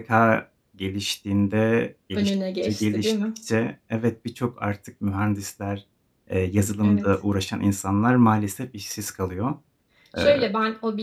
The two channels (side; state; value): both; identical; correlation 1.00